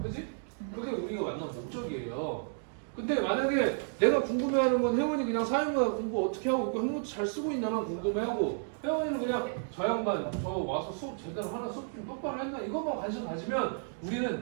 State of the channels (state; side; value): silent; left; digital silence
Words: 그지? 그게 우리가 만난 목적이에요. 근데 만약에 내가 궁금해하는 건 혜원이 그냥 사회문화 공부 어떻게 하고 있고 한국어 잘 쓰고 있나만 궁금해하고 혜원이는 그냥 저 양반 저 와서 수업 제대로 하나 수업 좀 똑바로 했나 이것만 관심 가지면 우리는